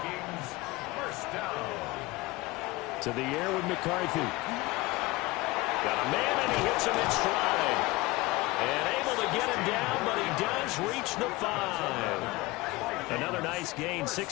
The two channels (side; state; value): right; quieter; 21.4 dB